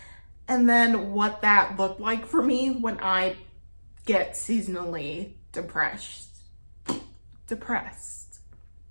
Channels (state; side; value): inverted; both; correlation -1.00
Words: and then what that looked like for me when I get seasonally depressed.